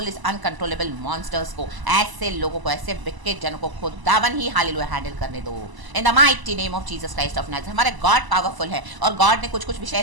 इस अनकंट्रोलेबल मॉन्स्टर्स को, ऐसे लोगों को, ऐसे विकेट जनों को खुदावन ही हालेलुया हैंडल करने दो, इन the mighty name of Jesus Christ of Nazareth. हमारे गॉड पावरफुल है, और गॉड ने कुछ कुछ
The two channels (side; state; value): left; late; 1.0 ms